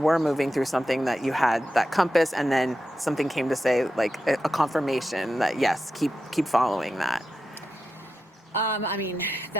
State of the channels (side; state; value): both; normal; correlation 0.89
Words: moving through something that you had that compass, and then something came to say, like a confirmation that yes, keep following that? I mean,